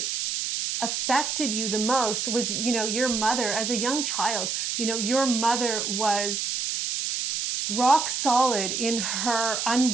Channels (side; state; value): right; noise; hiss, 1 dB below the sound